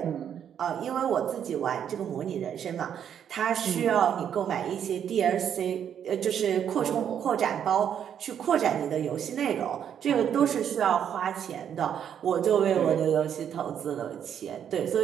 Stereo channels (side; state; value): left; quieter; 8.9 dB